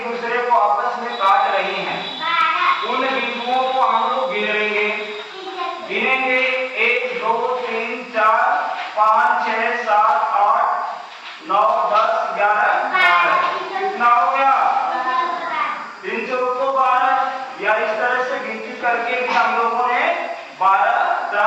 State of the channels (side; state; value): both; identical; correlation 1.00